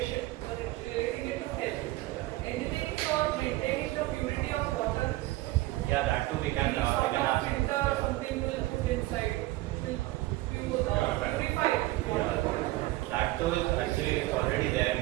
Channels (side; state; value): left; quieter; 18.4 dB